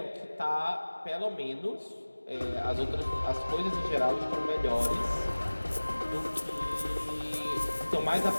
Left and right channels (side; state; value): both; inverted; correlation -1.00